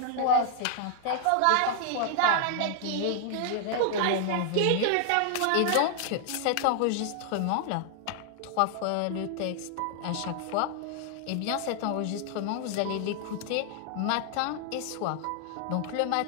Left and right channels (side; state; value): both; different; correlation 0.00